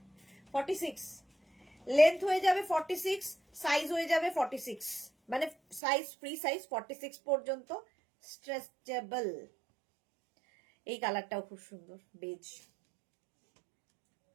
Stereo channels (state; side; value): drops out; left; at 5.8 s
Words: 46 লেন্থ হয়ে যাবে 46, সাইজ হয়ে যাবে 46, মানে সাইজ ফ্রি সাইজ 46 পর্যন্ত, স্ট্রেচেবল। এই কালারটাও খুব সুন্দর, বেজ।